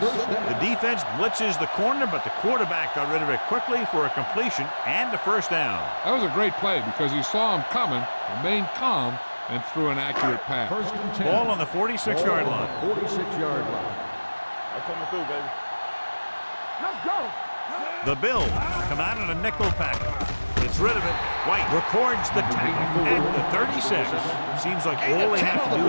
defense blitzes the corner, but the quarterback got rid of it quickly for a completion and a 1st down. That was a great play because he saw him coming, remained calm, and threw an accurate pass. 1st and 10. Ball on the 46-yard line. 46-yard line. I'm coming through, baby. Let's go. The Bills come out in a nickel pack. Gets rid of it. White records the tackle at the 36. Seems like all they have to do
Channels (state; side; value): inverted; both; correlation -1.00